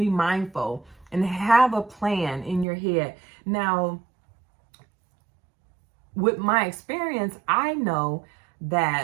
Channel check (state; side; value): drops out; left; at 2.7 s